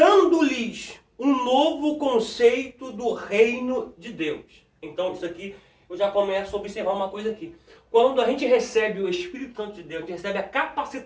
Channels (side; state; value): both; identical; correlation 1.00